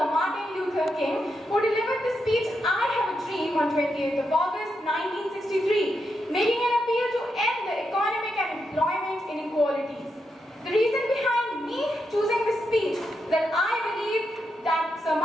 Martin Luther King, who delivered the speech I Have a Dream on 28th of August 1963, making an appeal to end the economic and employment inequalities. The reason behind me choosing this speech is that I believe that Sir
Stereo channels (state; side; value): normal; both; correlation 0.84